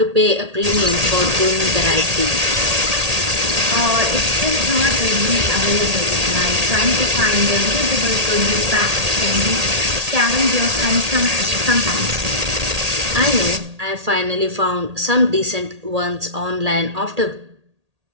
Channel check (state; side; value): late; left; 1.8 ms